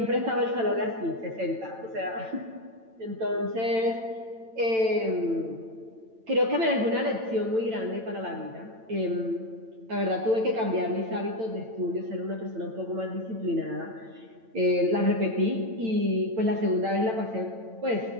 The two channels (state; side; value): late; left; 8.9 ms